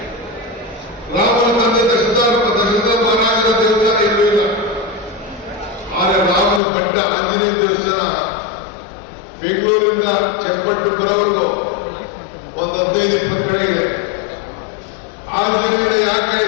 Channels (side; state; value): right; drops out; at 6.6 s